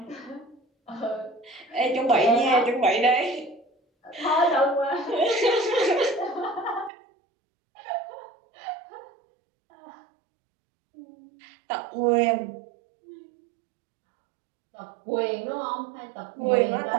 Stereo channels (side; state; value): left; drops out; at 6.9 s